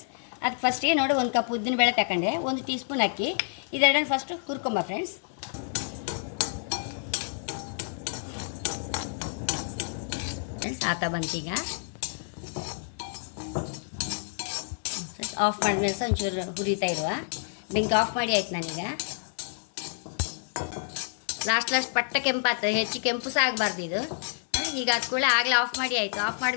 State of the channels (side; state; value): right; silent; digital silence